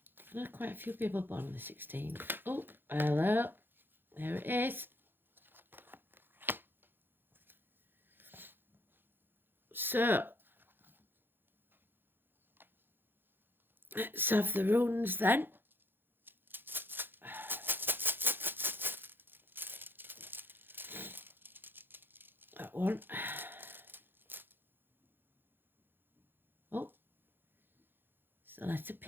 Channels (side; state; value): left; late; 0.099 ms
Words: know quite a few people born on the 16th. Oh, hello. There it is. So, let's have the runes then. That one. Oh, it's the letter